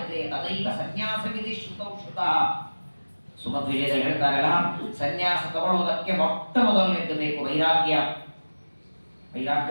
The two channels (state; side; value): inverted; both; correlation -1.00